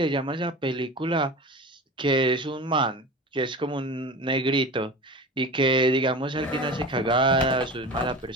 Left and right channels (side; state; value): both; normal; correlation 0.32